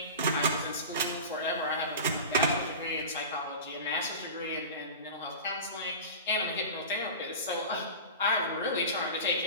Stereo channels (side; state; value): both; inverted; correlation -0.31